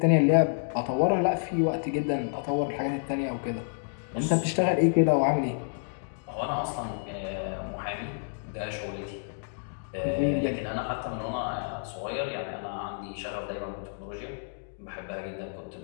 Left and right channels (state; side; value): silent; right; digital silence